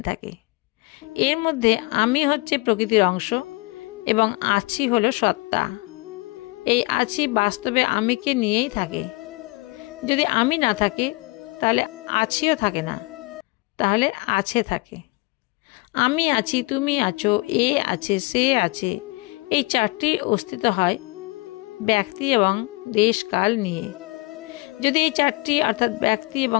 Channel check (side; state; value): right; quieter; 25.2 dB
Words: থাকে। এর মধ্যে আমি হচ্ছে প্রকৃতির অংশ এবং আছি হলো সত্তা। এই আছি বাস্তবে আমিকে নিয়েই থাকে। যদি আমি না থাকে, তাহলে আছিও থাকে না, তাহলে আছে থাকে। আমি আছি, তুমি আছো, এ আছে, সে আছে, এই চারটির অস্তিত্ব হয় ব্যক্তি এবং দেশকাল নিয়ে। যদি এই চারটি অর্থাৎ ব্যক্তি